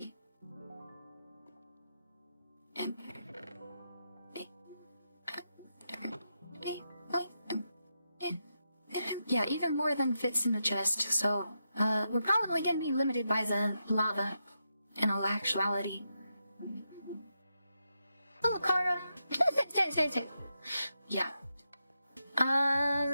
Yeah, even more than fits in the chest, so, we're probably gonna be limited by the lava, in all actuality. Oh, Kara! Yeah.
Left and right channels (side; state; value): both; inverted; correlation -0.85